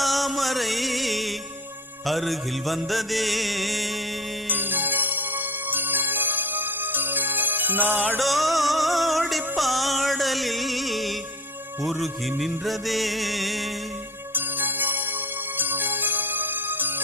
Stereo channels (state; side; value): normal; both; correlation 0.36